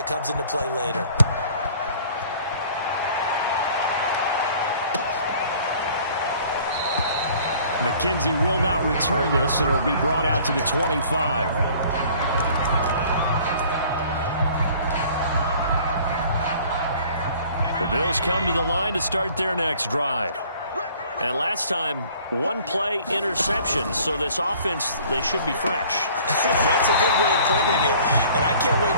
comes into play later? McKenzie will not return this, and it'll be brought out to the 25. The Bills come to the line to start their next drive. And last time, 1-play interception, so this offense, they should be fresh. That's a good way of putting it. And I can't wait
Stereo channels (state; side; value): inverted; both; correlation -0.53